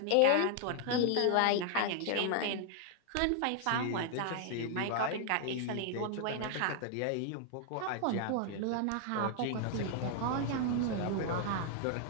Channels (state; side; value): different; both; correlation 0.00